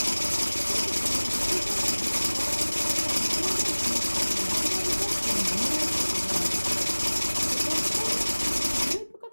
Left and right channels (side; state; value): both; inverted; correlation -1.00